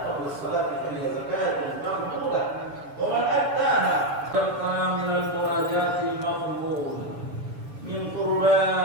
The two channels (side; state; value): left; late; 6.9 ms